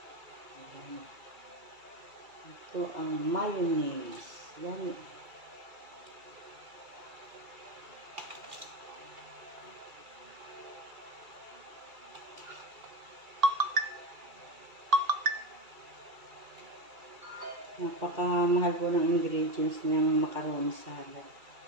Ito ang mayonnaise. Yan. Napakamahal po ng ingredients ng macaroni salad.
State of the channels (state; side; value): late; left; 2.3 ms